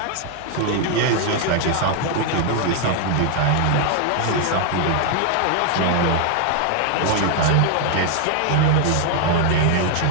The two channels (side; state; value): both; different; correlation 0.00